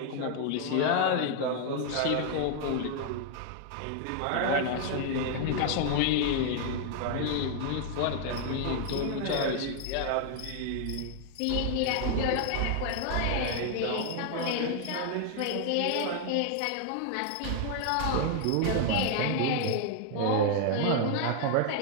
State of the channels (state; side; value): different; both; correlation 0.00